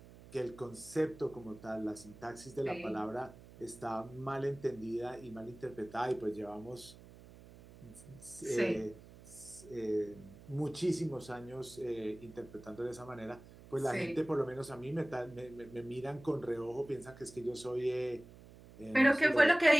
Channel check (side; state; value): right; noise; hum, 19 dB below the sound